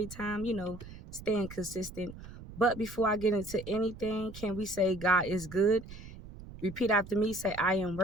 time, staying consistent. But before I get into anything, can we say God is good? Repeat after me, say I am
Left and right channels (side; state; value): right; noise; rumble, 15 dB below the sound